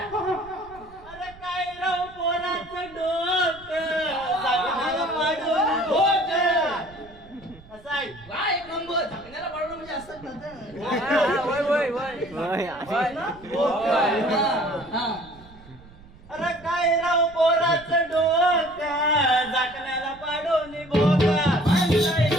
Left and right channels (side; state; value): right; noise; rumble, 22 dB below the sound